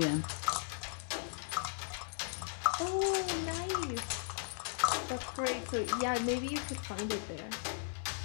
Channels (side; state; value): right; silent; digital silence